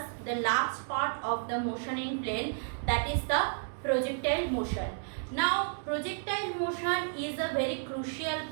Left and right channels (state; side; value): silent; left; digital silence